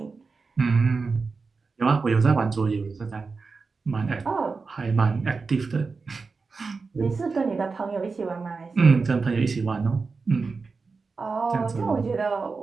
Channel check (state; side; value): quieter; left; 4.4 dB